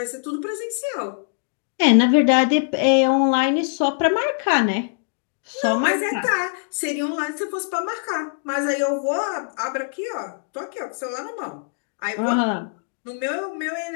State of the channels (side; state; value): right; silent; digital silence